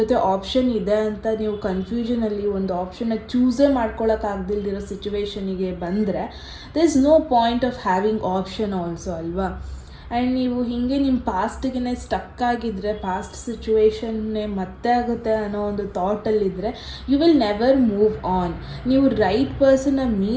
ಆಪ್ಷನ್ ಇದೆ ಅಂತ ನೀವು ಕನ್ಫ್ಯೂಷನಲ್ಲಿ ಒಂದು ಆಪ್ಷನ್ನ ಚೂಸೇ ಮಾಡ್ಕೊಳ್ಳೋಕ್ಕಾಗ್ದಿಲ್ದಿರೋ ಸಿಚುವೇಶನಿಗೆ ಬಂದರೆ there is no point of having option also ಅಲ್ವಾ. ಆ್ಯಂಡ್ ನೀವು ಹೀಗೆ ನಿಮ್ಮ ಪಾಸ್ಟಿಗೆ ಸ್ಟಕ್ ಆಗಿದ್ದರೆ, ಪಾಸ್ಟ್ ಸಿಚುವೇಶನ್ನೇ ಮತ್ತೆ ಆಗುತ್ತೆ ಅನ್ನೋ ಒಂದು ಥಾಟಲ್ಲಿದ್ದರೆ you will never move on. ನೀವು ರೈಟ್ ಪರ್ಸನ್ನ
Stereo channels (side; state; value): both; identical; correlation 1.00